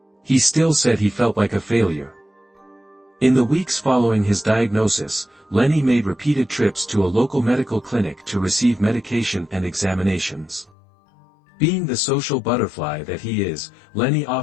He still said he felt like a failure." In the weeks following his diagnosis, Lenny made repeated trips to a local medical clinic to receive medication and examinations. Being the social butterfly that he is, Lenny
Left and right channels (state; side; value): drops out; right; at 10.7 s